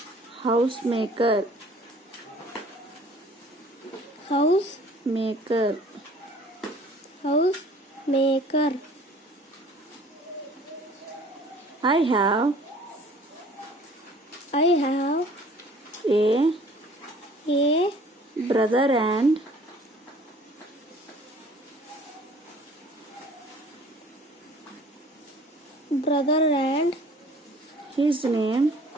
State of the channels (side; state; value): both; normal; correlation 0.51